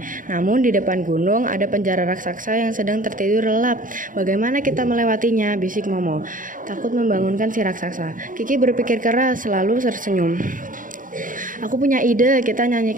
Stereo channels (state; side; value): late; left; 0.39 ms